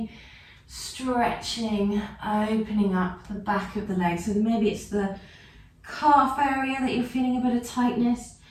stretching, opening up the back of the legs. So maybe it's the calf area that you're feeling a bit of tightness.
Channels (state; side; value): identical; both; correlation 1.00